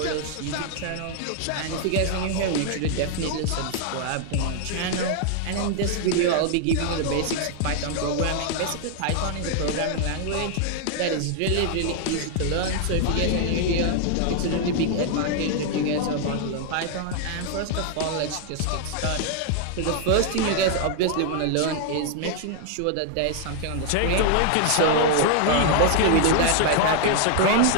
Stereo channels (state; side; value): different; both; correlation 0.00